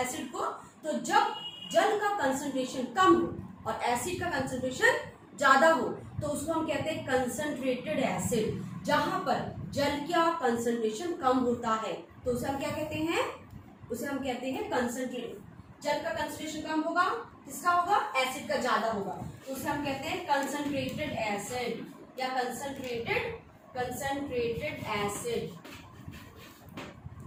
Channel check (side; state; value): both; identical; correlation 1.00